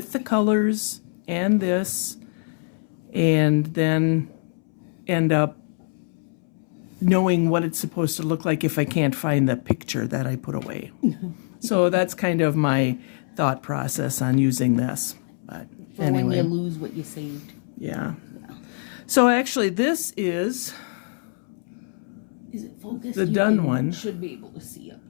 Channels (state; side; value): silent; right; 62 dB below the other